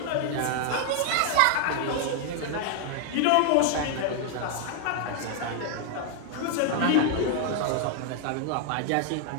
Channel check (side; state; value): both; different; correlation 0.00